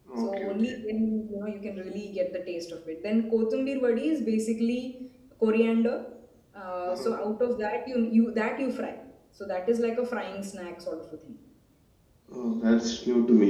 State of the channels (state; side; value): identical; both; correlation 1.00